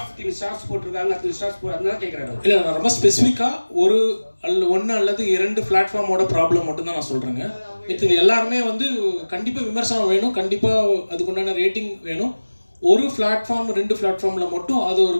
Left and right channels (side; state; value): both; inverted; correlation -1.00